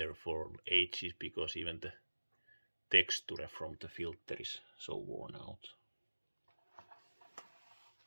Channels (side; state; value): both; inverted; correlation -1.00